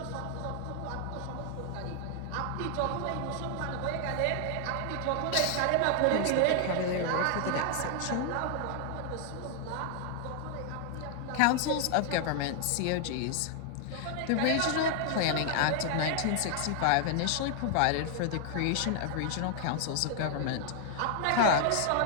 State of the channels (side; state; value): both; different; correlation 0.00